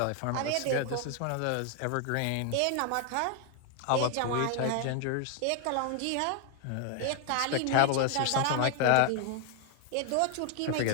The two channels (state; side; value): different; both; correlation 0.00